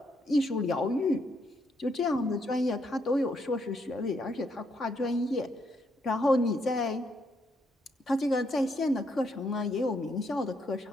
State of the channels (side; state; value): both; normal; correlation 0.75